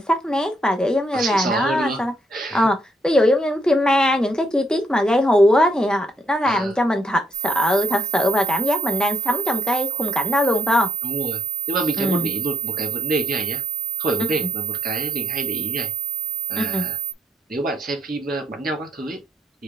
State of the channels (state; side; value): normal; both; correlation 0.76